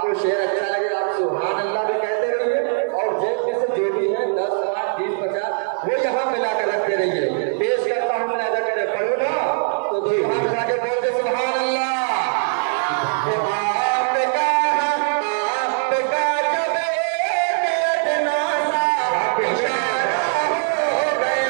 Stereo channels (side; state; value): left; silent; digital silence